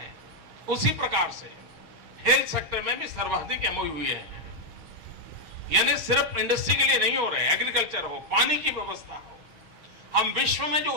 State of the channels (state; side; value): late; left; 6.3 ms